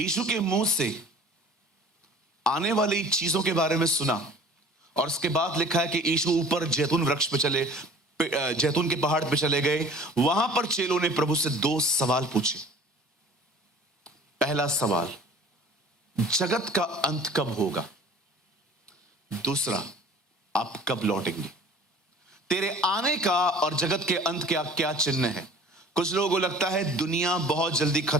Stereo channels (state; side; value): normal; both; correlation 0.46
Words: के मुंह से आने वाली चीजों के बारे में सुना, और उसके बाद लिखा है कि यीशु ऊपर जैतून वृक्ष पे चले, जैतून के पहाड़ पे चले गए। वहां पर चेलों ने प्रभु से 2 सवाल पूछे। पहला सवाल, जगत का अंत कब होगा? दूसरा, आप कब लौटेंगे? तेरे आने का और जगत के अंत का क्या चिन्ह है? कुछ लोगों को लगता है दुनिया बहुत जल्दी